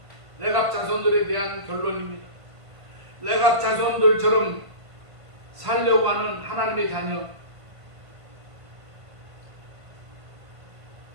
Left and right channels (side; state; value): left; late; 1.5 ms